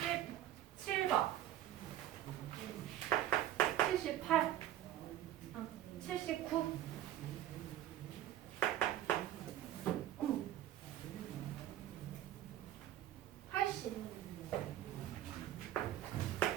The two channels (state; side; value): quieter; left; 12.6 dB